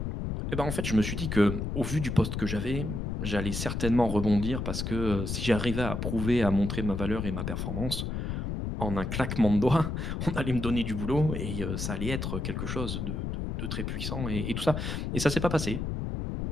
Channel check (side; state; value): left; noise; rumble, 3 dB below the sound